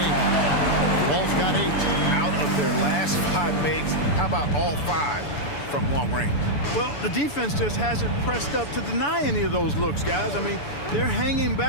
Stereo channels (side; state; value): right; late; 6.9 ms